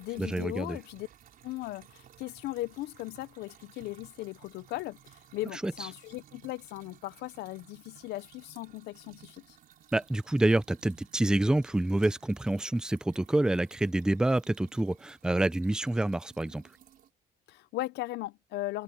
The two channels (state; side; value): normal; both; correlation 0.86